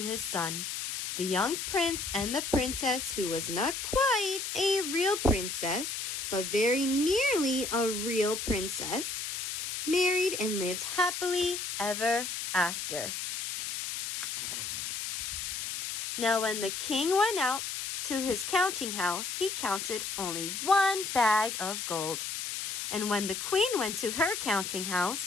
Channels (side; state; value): left; noise; hiss, 4 dB below the sound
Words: his son. The young prince and the princess, who was not quite a real princess, but very nearly a real princess, married and lived happily ever after. Now when the king went out to his counting house, he counted only 1 bag of gold. And when the queen went to her counting